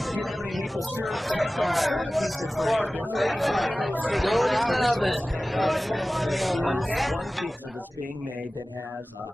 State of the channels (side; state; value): both; normal; correlation 0.97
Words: Do you have any maple syrup topping for the pizza for any of those Geauga traditionalists? As a matter of fact, there is one pizza that's being made that has